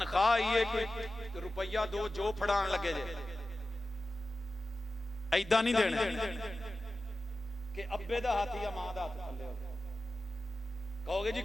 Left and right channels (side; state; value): both; normal; correlation 0.94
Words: आई है कोई रुपया दो जो फड़ान लगे जे, ऐदा नहीं देना कि अब्बे दा हाथ या मां दा हाथ थल्ले हो। कहोगे जी